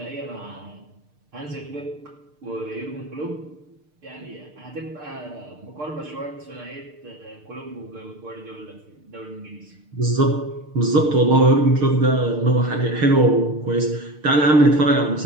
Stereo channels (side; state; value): left; late; 6.6 ms